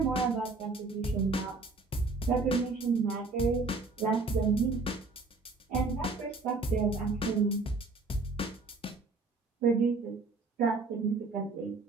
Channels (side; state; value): left; quieter; 3.7 dB